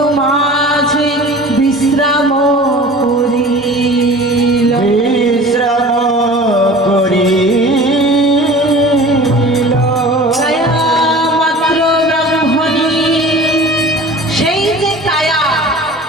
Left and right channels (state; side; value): normal; both; correlation 0.41